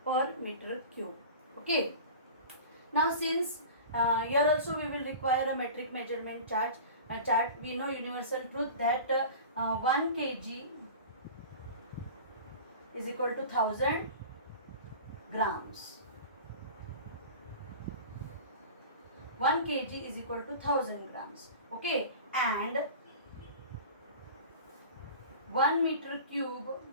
per meter cube. Okay. Now since here also we will require a metric measurement chart. We know universal truth that 1 kg is equal to 1000 grams. 1 kg is equal to 1000 grams. Okay, and 1 meter cube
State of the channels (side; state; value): both; inverted; correlation -0.37